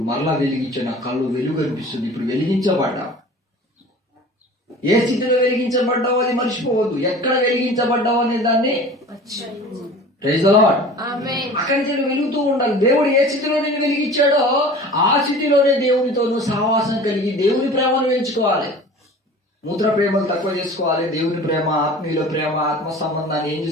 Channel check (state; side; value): normal; both; correlation 0.41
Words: మరలా వెలిగించే నా కళ్ళు వెలుగు అనిపిస్తుంది. ఇప్పుడు వెలిగించబడ్డా. ఏ స్థితిలో వెలిగించబడ్డావో అది మర్చిపోవద్దు. ఎక్కడ వెలిగించబడ్డావు అనే దాన్ని అక్కడి నుంచి వెలుగుతూ ఉండాలి. దేవుడు ఏ స్థితిలో నేను వెలిగించాడో ఆ స్థితిలోనే దేవునితో సహవాసం కలిగి దేవుని ప్రేమను పెంచుకోవాలి. మూత్ర ప్రేమలు తక్కువ చేసుకోవాలి. దేవుని ప్రేమ, ఆత్మీయుల ప్రేమ, ఆత్మ సంబంధాన్ని ఏం